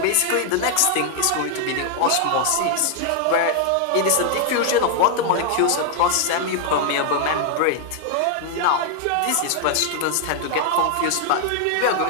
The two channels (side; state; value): both; different; correlation 0.00